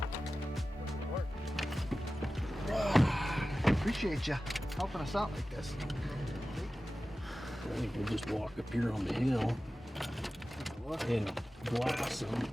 Appreciate you helping us out like this. I think we'll just walk up here on the hill and glass them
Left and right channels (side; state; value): both; normal; correlation 0.95